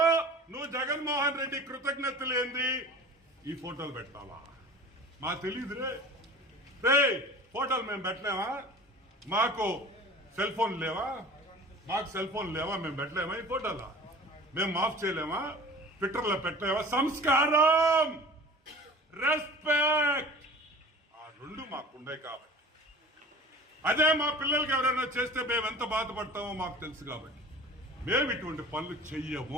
నువ్వు జగన్మోహన్ రెడ్డి కృతజ్ఞతలు ఏంది? ఈ ఫోటోలు పెట్టాలా? మాకు తెలియదురే. ఫోటోలు మేము పెట్టలేమా? మాకు సెల్ ఫోన్ లేవా? మేము పెట్టలేమా? ఈ ఫోటోలా మేము మాఫ్ చేయలేమా? ట్విట్టర్లో పెట్టలేవా? సంస్కారం, రెస్పెక్ట్, ఆ రెండు మాకుండే కాబట్టి. అదే మా పిల్లలకి ఎవరైనా చేస్తే మేము ఎంత బాధపడతామో మాకు తెలుసు కాబట్టి మేము ఇటువంటి పనులు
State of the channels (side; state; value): both; normal; correlation 0.42